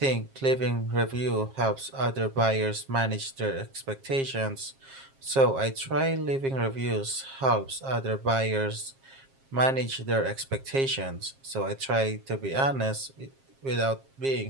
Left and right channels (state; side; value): late; left; 7.4 ms